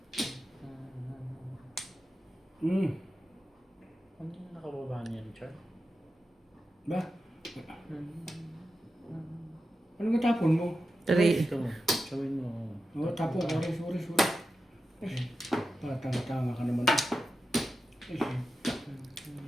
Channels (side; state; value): both; normal; correlation 0.91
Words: ano yung nakababa niyan, Char? Ba? Ano ka tapon mo? Three. Ito, showin mo. Oo, tapon. Sorry. Tanga ka naman.